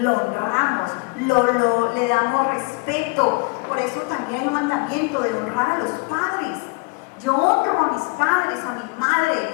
honramos, le damos respeto. Por eso también hay un mandamiento de honrar a los padres. Yo honro a mis padres, a mi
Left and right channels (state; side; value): quieter; right; 29.4 dB